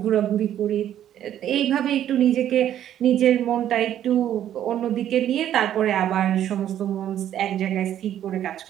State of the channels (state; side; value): quieter; left; 11.0 dB